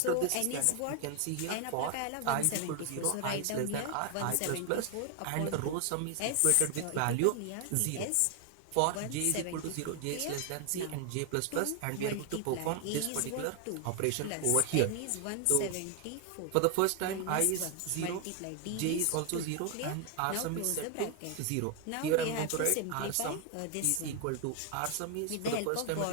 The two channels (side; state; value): both; different; correlation 0.00